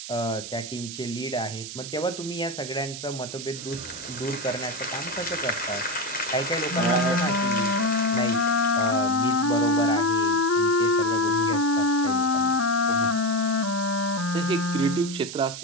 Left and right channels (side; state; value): right; noise; hiss, 10 dB below the sound